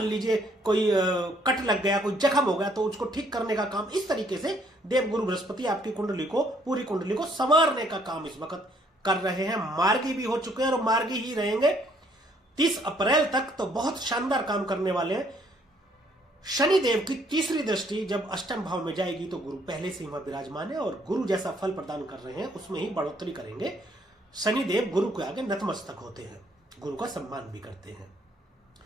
लीजिए कोई कट लग गया, कोई जख्म हो गया, तो उसको ठीक करने का काम इस तरीके से देवगुरु बृहस्पति आपकी कुंडली को, पूरी कुंडली को संवारने का काम इस वक्त कर रहे हैं। मार्गी भी हो चुके हैं और मार्गी ही रहेंगे 30 अप्रैल तक, तो बहुत शानदार काम करने वाले हैं। शनिदेव की तीसरी दृष्टि जब अष्टम भाव में जाएगी तो गुरु पहले से ही वहां विराजमान है और गुरु जैसा फल प्रदान कर रहे हैं उसमें ही बढ़ोतरी करेंगे। शनिदेव गुरु के आगे नतमस्तक होते हैं, गुरु का सम्मान भी करते हैं।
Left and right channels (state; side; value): normal; both; correlation 0.66